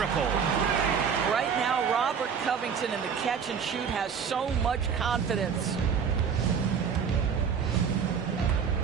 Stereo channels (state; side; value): quieter; left; 6.8 dB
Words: Right now, Robert Covington in the catch and shoot has so much confidence.